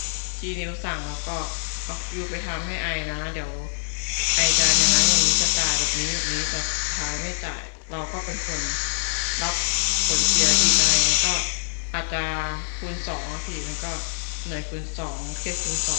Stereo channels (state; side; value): silent; right; 62 dB below the other